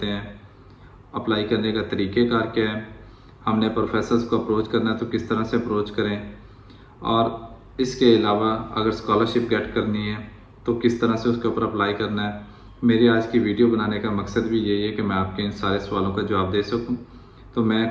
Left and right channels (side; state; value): both; identical; correlation 1.00